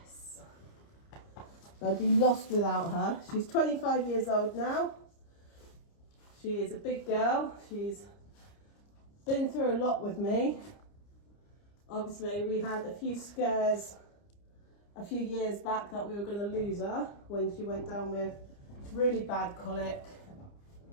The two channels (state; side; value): late; right; 29 ms